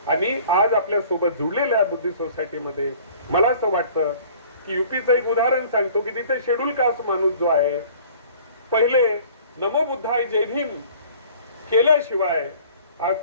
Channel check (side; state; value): both; inverted; correlation -0.50